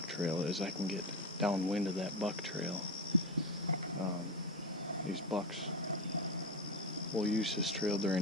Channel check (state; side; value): normal; both; correlation 0.17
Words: trail is. I can get downwind of that buck trail. These bucks will use this trail